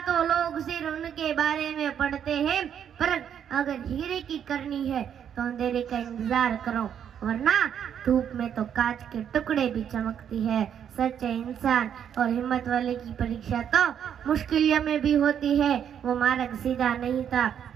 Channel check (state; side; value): quieter; left; 8.8 dB